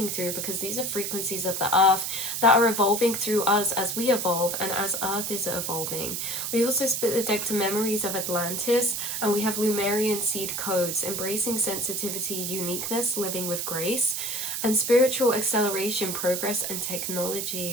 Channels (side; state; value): right; noise; hiss, 3 dB below the sound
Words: through, because these are frequencies of the earth that are evolving through us as we evolve and as earth is evolving. We also split the deck to memories of Atlantis, and we have Lumerian seed codes, embracing sensitivity, uniqueness, living with grace, and spiritual acceleration, progress, and